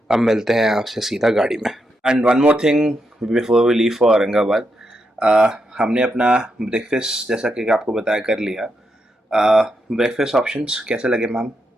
अब मिलते हैं आपसे सीधा गाड़ी में। And one more thing before we leave for Aurangabad, हमने अपना ब्रेकफास्ट जैसा कि आपको बताया कर लिया। ब्रेकफास्ट ऑप्शंस कैसे लगे मैम?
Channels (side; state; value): both; normal; correlation 0.82